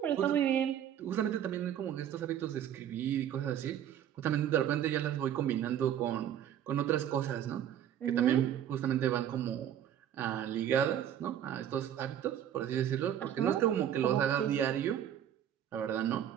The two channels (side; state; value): left; quieter; 10.2 dB